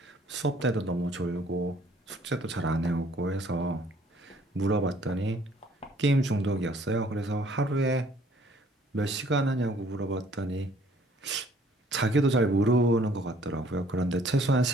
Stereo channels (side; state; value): both; normal; correlation 0.59